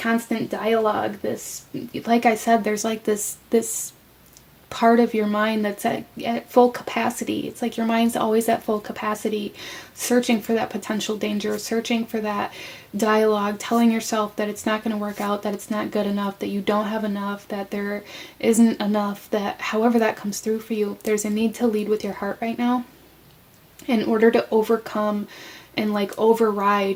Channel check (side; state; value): both; identical; correlation 1.00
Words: dialogue. This, like I said, there's like this part of your mind that's at full capacity. It's like your mind's always at full capacity, searching for that potential danger, searching for that dialogue, telling yourself that it's not going to work out, that it's not good enough, that you don't have enough, that there isn't enough, that however that comes through for you, there's a need to lead with your heart right now in order to overcome and like